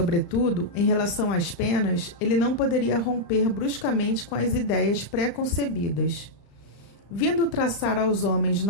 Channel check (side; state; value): right; late; 35 ms